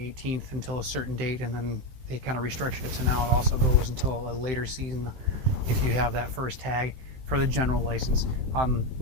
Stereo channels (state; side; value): late; left; 15 ms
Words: until a certain date, and then they kind of restructured it, so now it also goes until a later season if you have that first tag for the general license.